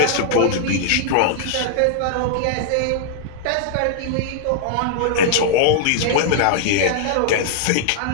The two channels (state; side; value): different; both; correlation -0.01